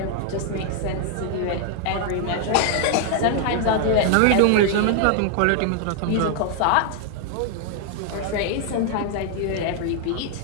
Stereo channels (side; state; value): both; different; correlation 0.00